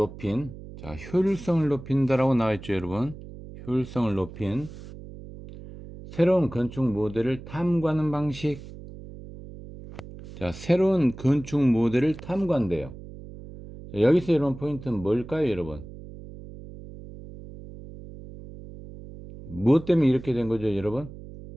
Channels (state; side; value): noise; right; hum, 15 dB below the sound